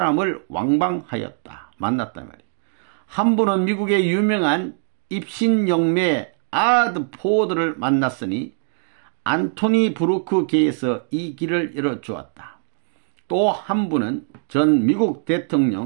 왕방하였다. 만났단 말이야. 한 분은 미국의 유명한 입신영매 아드 포워드를 만났으니 안토니 브루크계에서 이 길을 열어주었다. 또 한 분은 전 미국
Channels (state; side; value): silent; left; digital silence